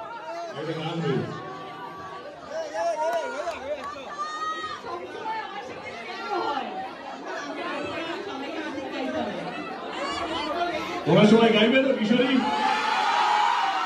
একটা গান হয়েছে তোমরা সবাই গাইবে তো কিশোরী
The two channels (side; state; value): both; identical; correlation 1.00